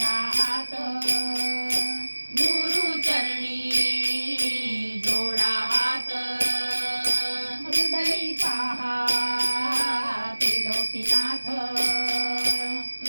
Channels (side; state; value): both; inverted; correlation -1.00